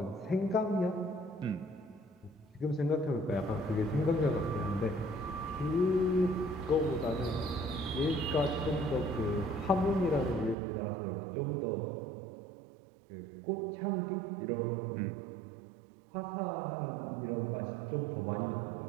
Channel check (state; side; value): drops out; left; at 10.6 s